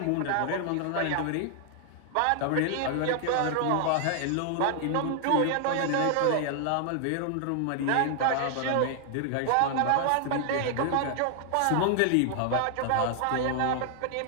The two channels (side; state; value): both; different; correlation 0.00